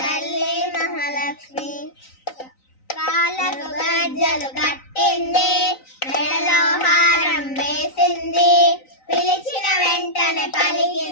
తల్లి మహాలక్ష్మి కాళ్ళకు గజ్జలు కట్టింది మెడలో హారం వేసింది పిలిచిన వెంటనే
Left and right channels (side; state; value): right; late; 3.9 ms